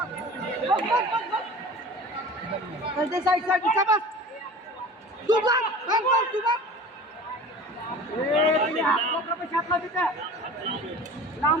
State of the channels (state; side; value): normal; both; correlation 0.39